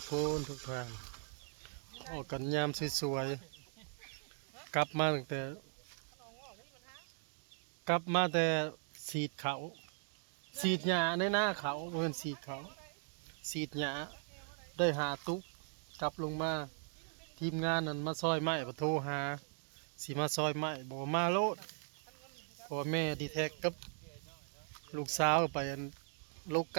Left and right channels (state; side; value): silent; left; 52 dB below the other